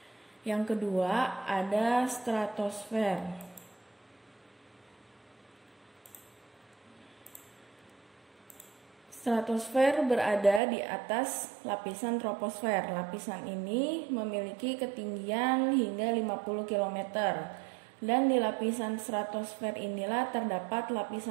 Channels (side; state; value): left; drops out; at 10.6 s